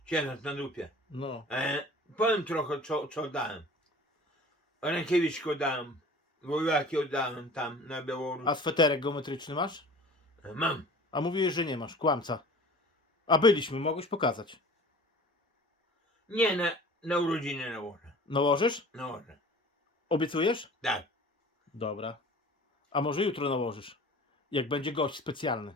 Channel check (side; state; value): both; normal; correlation 0.44